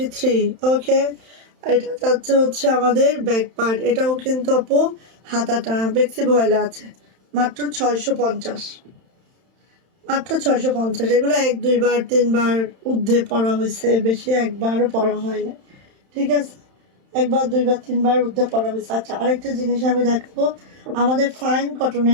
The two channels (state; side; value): late; left; 31 ms